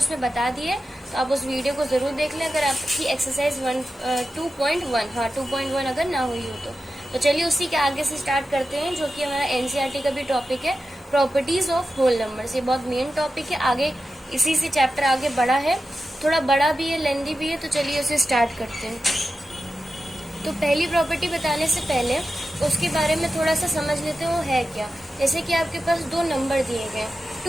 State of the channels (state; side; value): normal; both; correlation 0.92